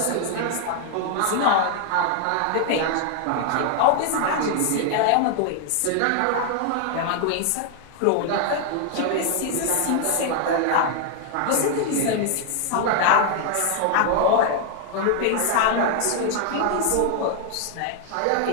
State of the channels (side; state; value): both; different; correlation 0.00